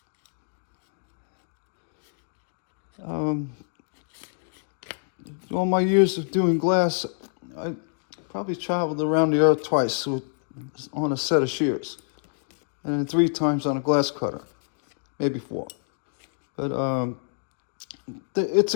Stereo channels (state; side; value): silent; right; digital silence